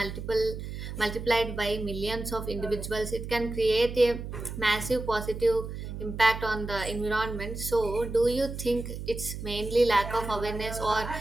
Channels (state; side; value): noise; right; hum, 8 dB below the sound